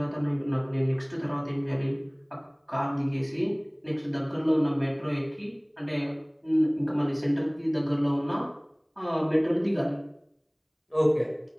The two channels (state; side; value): identical; both; correlation 1.00